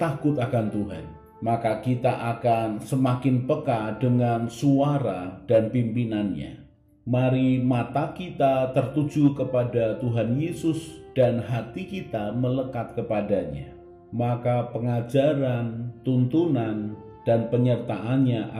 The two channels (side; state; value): both; identical; correlation 1.00